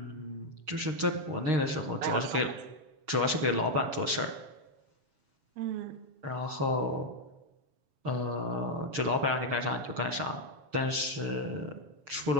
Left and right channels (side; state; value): left; late; 7.2 ms